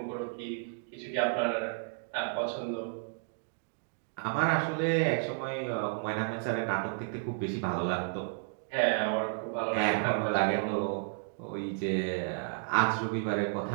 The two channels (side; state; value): left; silent; digital silence